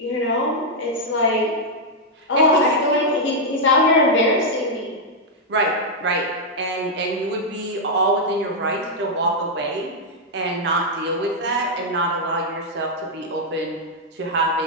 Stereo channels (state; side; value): normal; both; correlation -0.03